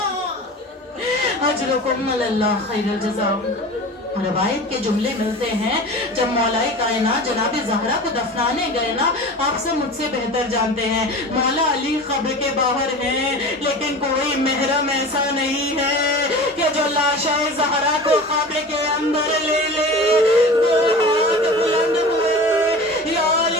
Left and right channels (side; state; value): both; normal; correlation 0.35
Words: اجرکم اللہ خیر الجزا۔ روایت کے جملے ملتے ہیں جب مولا کائنات جناب زہرا کو دفنانے گئے نا، آپ سے مجھ سے بہتر جانتے ہیں مولا علی قبر کے باہر ہیں، لیکن کوئی محرم ایسا نہیں ہے کہ جو لاشا زہرا کو قبر کے اندر لے لے۔ دو ہاتھ بلند ہوئے، یا